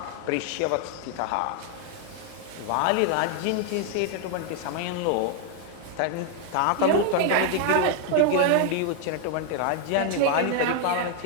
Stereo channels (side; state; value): both; different; correlation 0.00